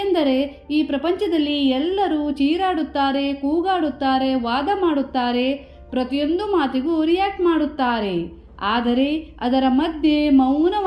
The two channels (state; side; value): identical; both; correlation 1.00